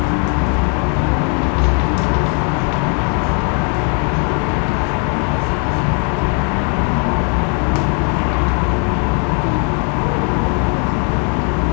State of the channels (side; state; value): right; quieter; 39.2 dB